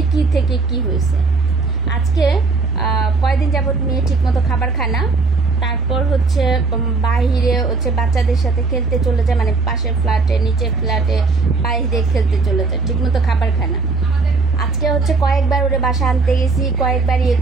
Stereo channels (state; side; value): quieter; left; 4.1 dB